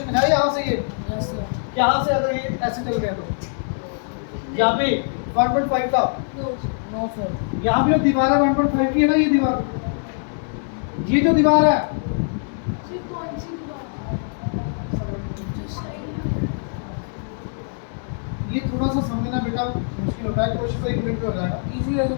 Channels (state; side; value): silent; right; digital silence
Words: है यहाँ से, ये Yes, sir. यहाँ से अगर ये ऐसे चल गया तो यहाँ पे 1.5 था, नो No, sir. यहाँ पे जो दीवार है 1.5 की है ना, ये दीवार, ये जो दीवार है फिर कौन सी दीवार, जो साइड ये थोड़ा सा समझना बेटा मुश्किल होता है, कोशिश तो 1 मिनट में हो जाएगा। Easy है तो